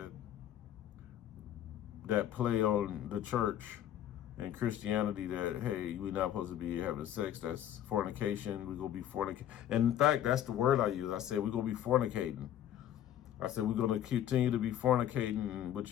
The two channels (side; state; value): right; quieter; 11.2 dB